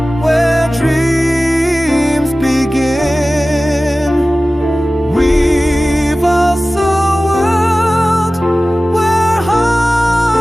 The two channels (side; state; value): both; normal; correlation 0.96